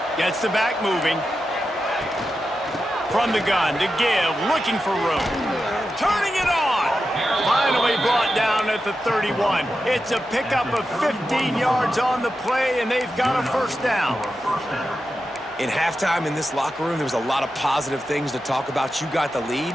Gets the back moving. From the gun to give, looking for room. Turning it on. Finally brought down at the 31. It's a pickup of 15 yards on the play, and they've got a first down. In halftime in this locker room, there was a lot of positive things to talk about. You got the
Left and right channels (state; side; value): normal; both; correlation 0.90